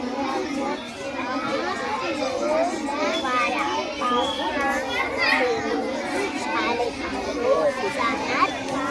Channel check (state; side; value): identical; both; correlation 1.00